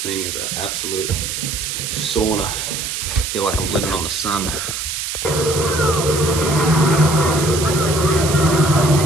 is an absolute sauna. I feel like I'm living on the sun.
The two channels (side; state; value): right; noise; hiss, 4 dB below the sound